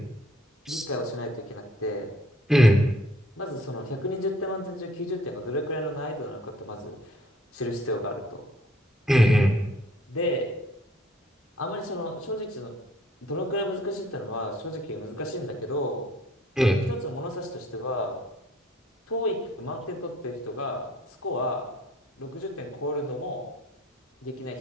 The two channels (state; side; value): normal; both; correlation 0.59